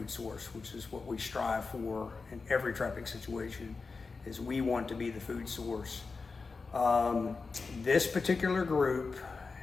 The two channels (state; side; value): quieter; right; 4.4 dB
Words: source, which is what we strive for in every trapping situation, is we want to be the food source. This particular group,